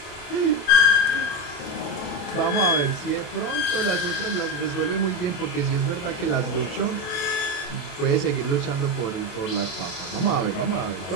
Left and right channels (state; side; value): late; right; 28 ms